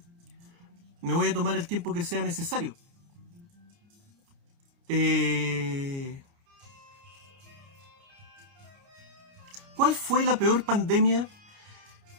Me voy a tomar el tiempo que sea necesario. ¿Cuál fue la peor pandemia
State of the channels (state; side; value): late; left; 29 ms